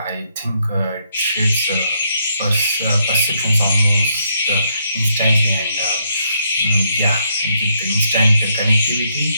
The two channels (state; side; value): inverted; both; correlation -0.74